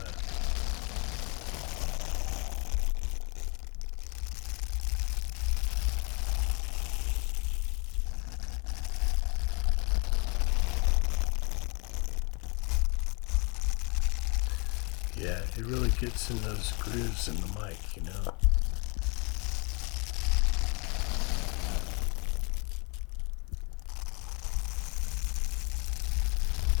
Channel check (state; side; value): quieter; right; 31.8 dB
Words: Yeah, it really gets in those grooves in the mic, you know.